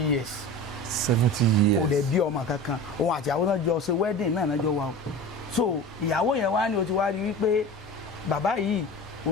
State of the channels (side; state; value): both; normal; correlation 0.33